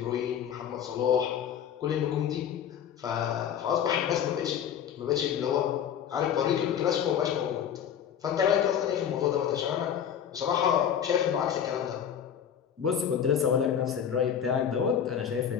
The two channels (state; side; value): quieter; right; 8.7 dB